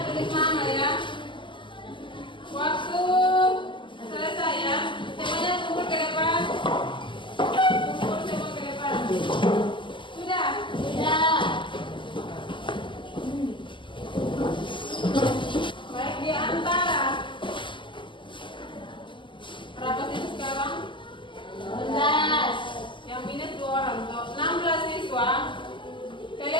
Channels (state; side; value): late; right; 0.24 ms